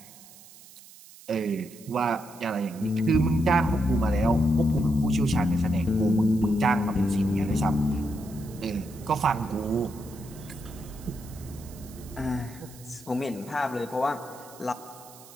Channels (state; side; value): noise; right; hiss, 21 dB below the sound